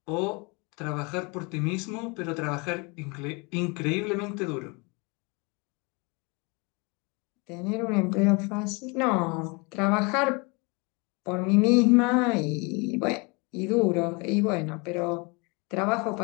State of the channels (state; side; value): quieter; right; 29.4 dB